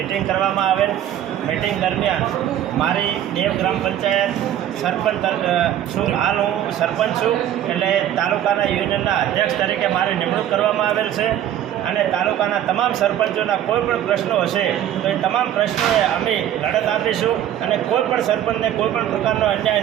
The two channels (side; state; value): left; quieter; 11.3 dB